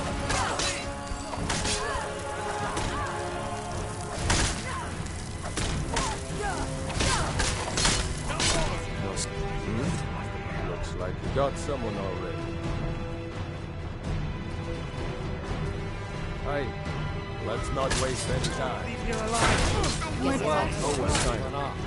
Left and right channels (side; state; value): both; identical; correlation 1.00